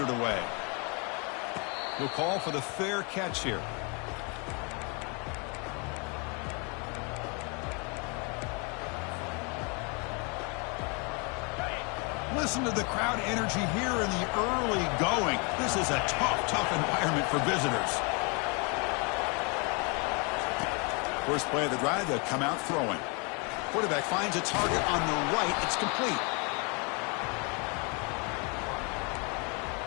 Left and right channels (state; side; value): quieter; right; 32.9 dB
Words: it away. He'll call for the fair catch here. Listen to the crowd energy here in the early going. This is a tough environment for visitors. First play of the drive, they'll come out throwing. Quarterback finds a target on the right. It's complete.